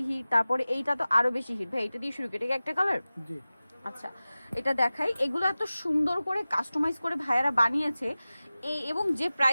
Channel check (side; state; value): both; inverted; correlation -0.97